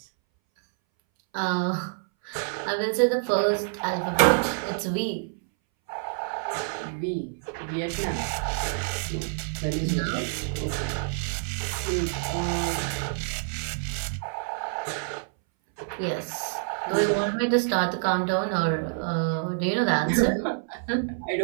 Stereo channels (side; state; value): left; silent; 60 dB below the other